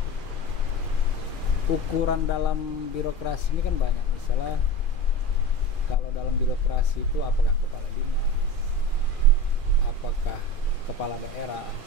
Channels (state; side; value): late; right; 2.4 ms